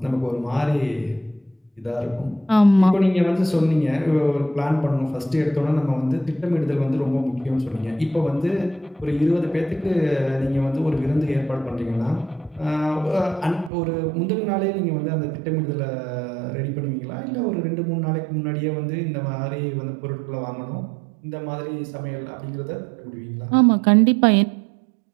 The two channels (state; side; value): drops out; left; at 13.7 s